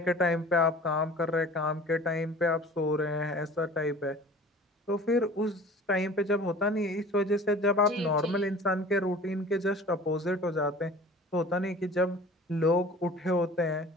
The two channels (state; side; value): normal; both; correlation 0.44